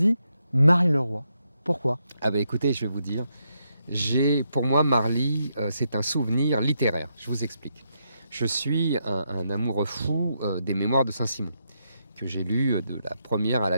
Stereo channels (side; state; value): both; inverted; correlation -0.81